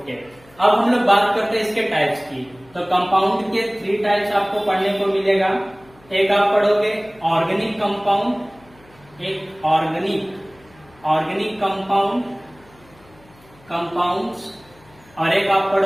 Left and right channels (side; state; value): left; noise; hum, 28 dB below the sound